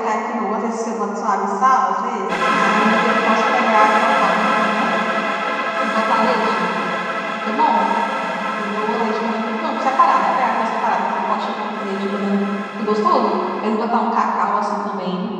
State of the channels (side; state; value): both; identical; correlation 1.00